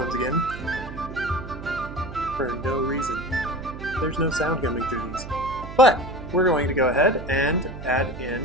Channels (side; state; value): right; noise; hum, 11 dB below the sound